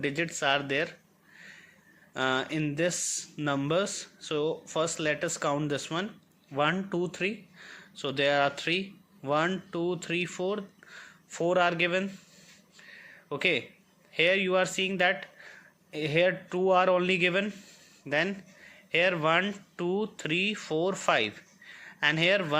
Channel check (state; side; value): identical; both; correlation 1.00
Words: are there in this numbers. So first let us count this one, 1 2 3. So there are 3, 1 2 3 4, 4 are given. Okay, here you are seeing that here 2 are only given, then here 1 2 3 4 5, and here